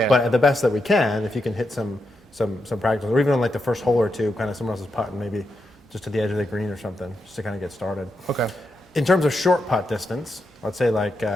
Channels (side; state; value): both; normal; correlation 0.85